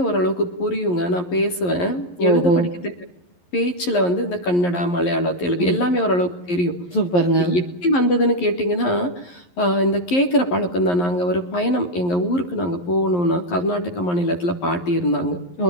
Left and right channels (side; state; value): right; late; 11 ms